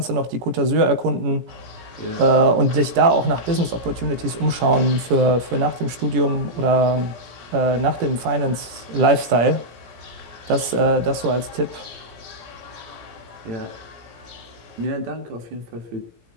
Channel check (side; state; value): left; late; 17 ms